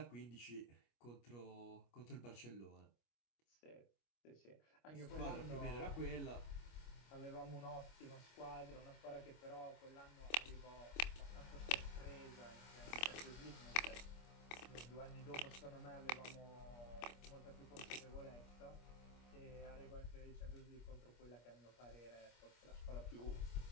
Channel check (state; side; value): late; right; 25 ms